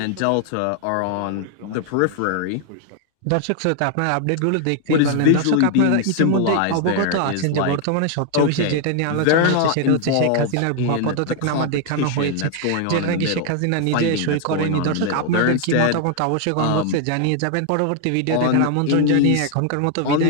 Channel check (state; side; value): different; both; correlation 0.00